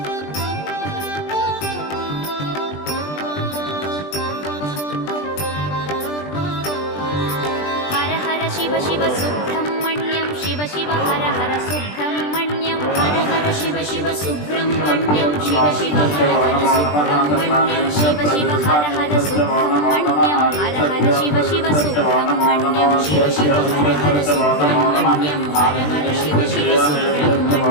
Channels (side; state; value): right; late; 20 ms